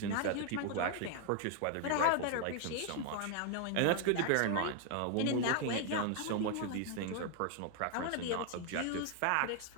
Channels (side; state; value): both; different; correlation 0.00